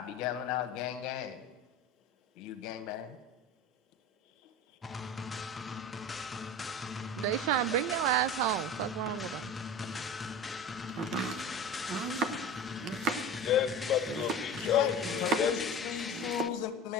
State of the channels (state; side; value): normal; both; correlation 0.33